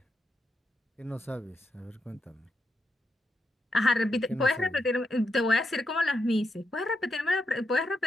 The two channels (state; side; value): normal; both; correlation 0.84